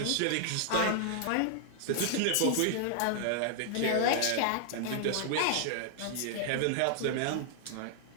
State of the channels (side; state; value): both; different; correlation 0.00